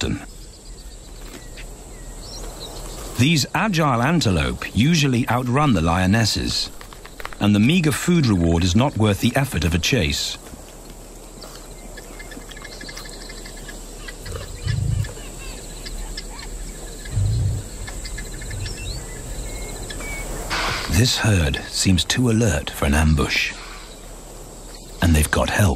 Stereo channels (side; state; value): both; identical; correlation 1.00